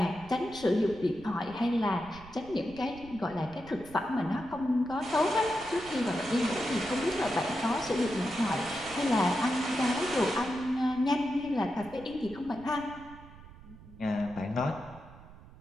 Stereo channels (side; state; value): right; noise; rumble, 19 dB below the sound